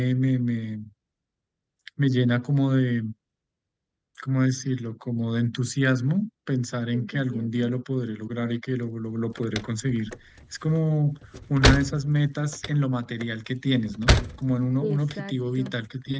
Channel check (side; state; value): both; identical; correlation 1.00